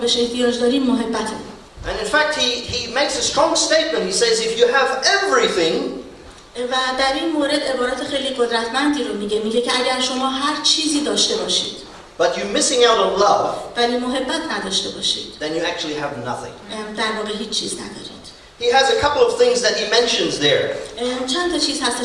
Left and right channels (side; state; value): both; identical; correlation 1.00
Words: احتیاج داریم محبته. And in fact, he makes a strong statement. He says, if you have everything, و در این مورد عبارت خیلی قدرتمندی رو میگه که اگر شما هر چیزی داشته باشید but you're missing out on love, ولی محبت نداشته باشید then you actually have nothing. در واقع هیچ چیز ندارید. He has a couple of things that he mentions there. چند تا چیز